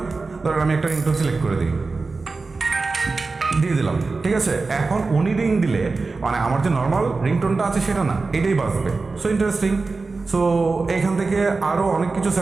ধরেন আমি একটা রিংটোন সিলেক্ট করে দিই, দিয়ে দিলাম। ঠিক আছে, এখন উনি রিং দিলে মানে আমার যে নর্মাল রিংটোনটা আছে সেটা না, এটাই বাজবে। So interesting. সো এখান থেকে আরও অনেক কিছু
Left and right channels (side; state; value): left; quieter; 3.9 dB